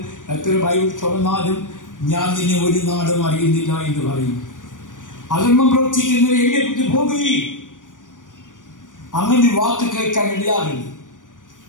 എത്ര ബൈബിൾ തുറന്നാലും ഞാൻ നിന്നെ ഒരു നാടും അറിയുന്നില്ല എന്ന് പറയും. അധർമ്മം പ്രവർത്തിക്കുന്നത് എന്നെ വിട്ടു പോകുകയും അങ്ങനെ വാക്ക് കേൾക്കാൻ ഇടയാകരുത്.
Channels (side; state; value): right; late; 0.88 ms